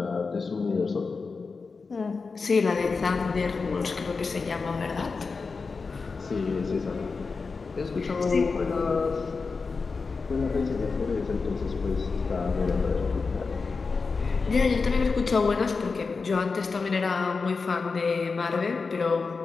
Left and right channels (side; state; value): right; quieter; 4.5 dB